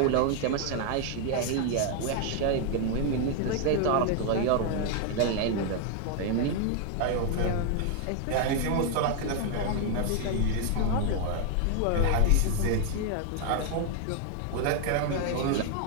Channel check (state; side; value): different; both; correlation 0.00